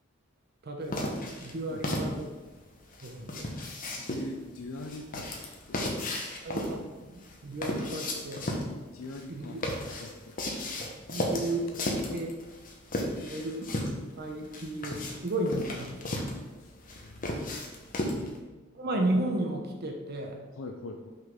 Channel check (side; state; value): both; normal; correlation 0.48